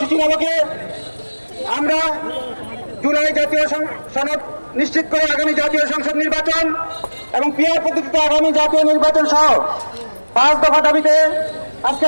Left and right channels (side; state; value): both; inverted; correlation -1.00